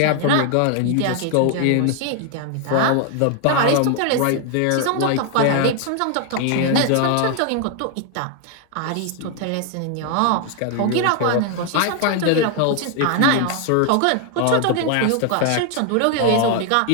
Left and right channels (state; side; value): different; both; correlation 0.00